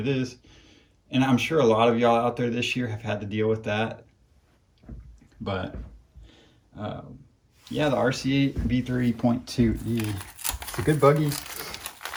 is. And I'm sure a lot of y'all out there this year have had to deal with that. But yeah, the RC8B3.2E, it's a good buggy.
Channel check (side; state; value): both; identical; correlation 1.00